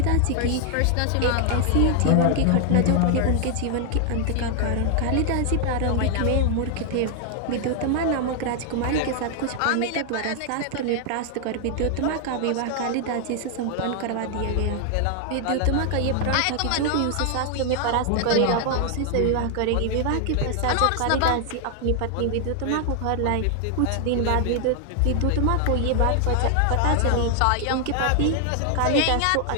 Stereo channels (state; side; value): different; both; correlation 0.00